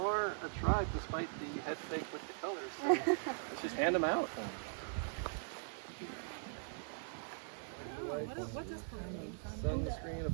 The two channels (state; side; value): silent; left; digital silence